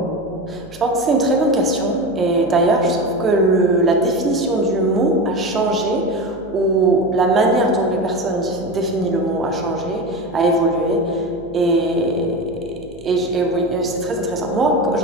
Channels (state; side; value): noise; right; hum, 22 dB below the sound